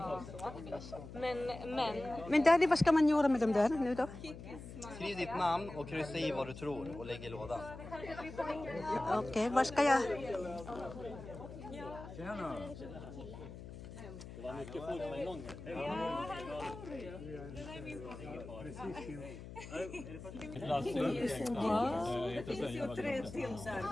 Men Daddy, vad ska man göra med dem där nu då? Skriv ditt namn och kryssa i vad du tror och lägg i lådan. Okej, vad ska jag... Det var mycket folk på en gång.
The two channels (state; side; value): noise; left; hum, 12 dB below the sound